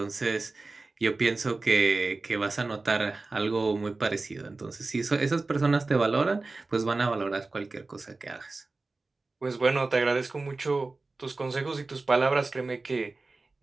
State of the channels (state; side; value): quieter; left; 3.5 dB